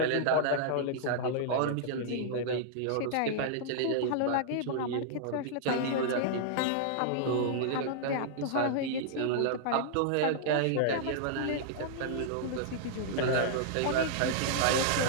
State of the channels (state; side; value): different; both; correlation -0.01